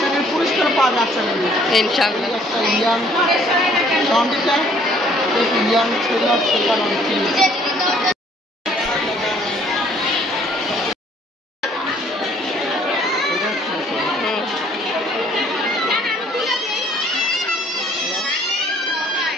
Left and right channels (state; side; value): normal; both; correlation 0.60